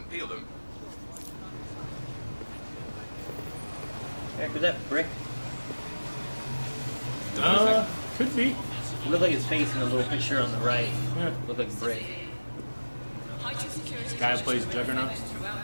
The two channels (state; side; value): inverted; both; correlation -1.00